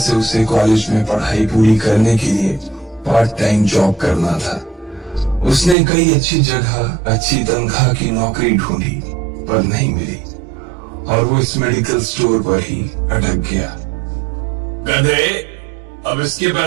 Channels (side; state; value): left; drops out; at 5.8 s